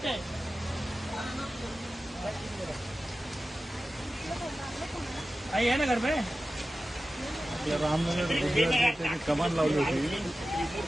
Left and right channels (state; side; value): normal; both; correlation 0.94